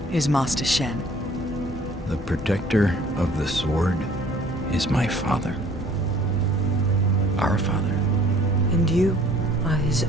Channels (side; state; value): both; normal; correlation 0.54